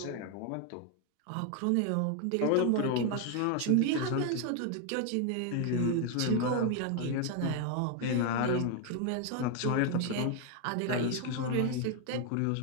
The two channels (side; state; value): both; different; correlation 0.01